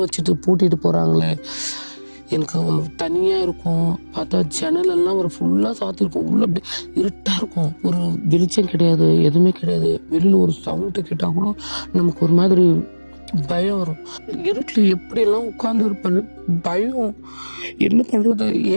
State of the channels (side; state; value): both; inverted; correlation -1.00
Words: வச்சுட்டு பூட்டிட்டு போகிறாங்களே. எனக்கு தனியாக இருக்கும். பார்த்தா ஜன்னலெல்லாம் ஃபுல்லாக சாத்திருக்கும். உள்ளே அப்படி இருட்டாக இருக்கும். ஒரு வெளிச்சம் கிடையாது, எதுவுமே கிடையாது. வெளியில் ஒரு சவுண்டு கேட்டால் கூட நமக்கு ஒரு மாதிரி பயம் வரும். இருட்டில் எப்படியெல்லாம் உட்கார்ந்து இருப்பேன்னு பயம். என்ன பண்ணுறது